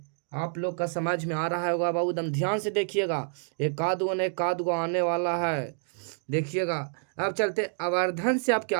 आप लोग का समझ में आ रहा होगा बाबू। एकदम ध्यान से देखिएगा, एक आध गो आने वाला है। देखिएगा, अब चलते। आवर्धन से आप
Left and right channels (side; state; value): left; silent; 56 dB below the other